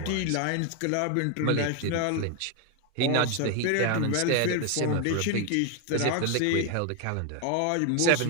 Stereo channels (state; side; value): different; both; correlation 0.01